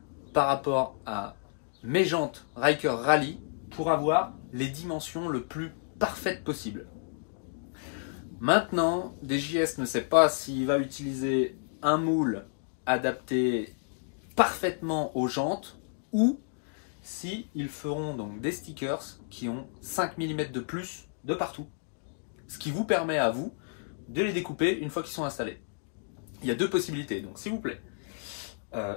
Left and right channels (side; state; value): right; silent; digital silence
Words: par rapport à mes jantes Ryker Rally pour avoir les dimensions le plus parfaites possible. Maintenant, DJS ne sait pas s'il va utiliser un moule adapté parfaitement aux jantes ou si ils feront donc des stickers qui ont 5 mm de plus de partout, ce qui vous permet à vous de les découper une fois qu'ils sont installés. Il y a deux possibilités, donc s'il vous plaît,